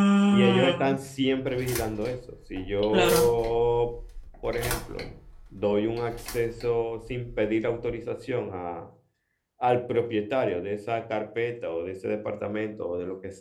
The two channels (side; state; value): both; identical; correlation 1.00